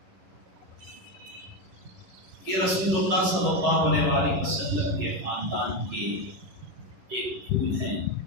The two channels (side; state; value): left; late; 11 ms